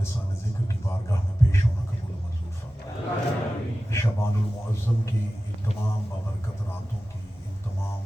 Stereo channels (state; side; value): normal; both; correlation 0.95